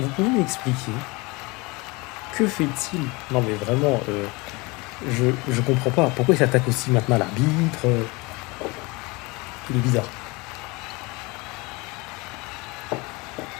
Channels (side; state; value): right; quieter; 25.5 dB